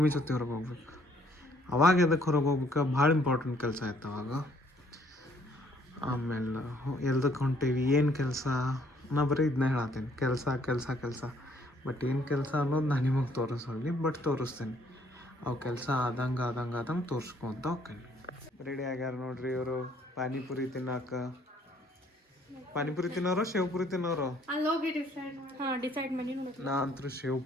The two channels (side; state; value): both; normal; correlation 0.64